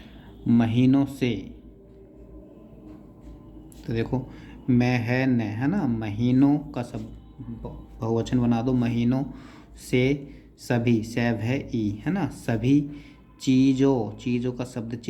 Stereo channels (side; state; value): both; identical; correlation 1.00